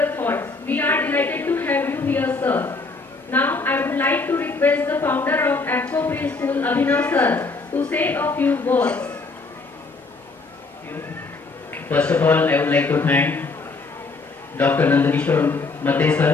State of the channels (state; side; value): quieter; right; 3.9 dB